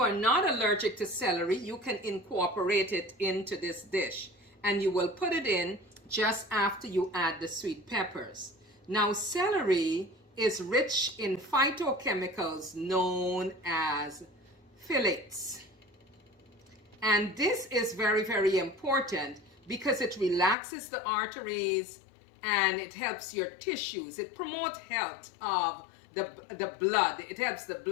are not allergic to celery, you can incorporate it into this dish and you will put it in just after you add the sweet peppers. Now, celery is rich in phytochemicals known as phthalates. And this is very, very important because it relaxes the arteries and it helps your tissues. It promotes health of the blood. It helps the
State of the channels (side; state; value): right; drops out; at 20.6 s